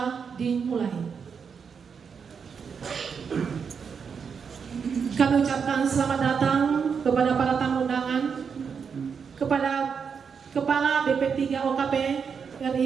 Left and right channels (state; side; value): quieter; left; 6.3 dB